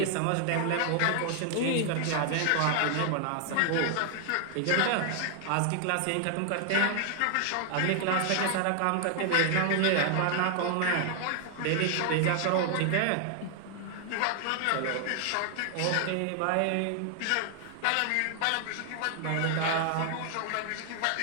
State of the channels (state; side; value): different; both; correlation 0.00